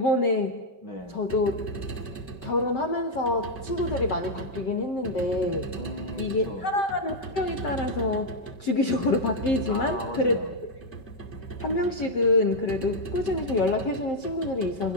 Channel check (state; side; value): late; right; 5.2 ms